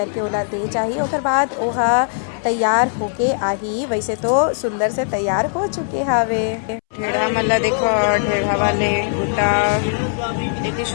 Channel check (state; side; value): silent; right; 66 dB below the other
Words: ओला दे चाहिए। ओकर बाद ओहा तैयार होके आही। वैसे तो सुंदर से तैयार हो चुके हावे। ढेढ़ा मल्ला देखो, ढेढ़ा वाले बूटा लेके